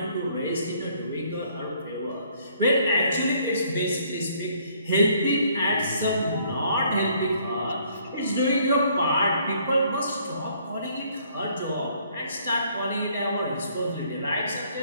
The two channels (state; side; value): inverted; both; correlation -0.63